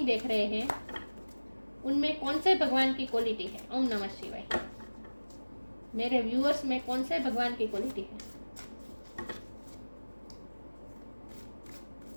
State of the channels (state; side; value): inverted; both; correlation -1.00